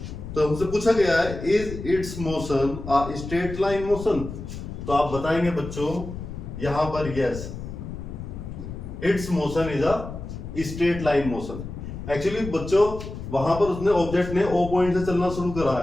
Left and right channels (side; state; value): left; noise; rumble, 9 dB below the sound